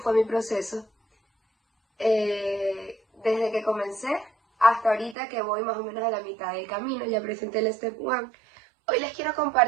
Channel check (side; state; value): left; drops out; at 5.2 s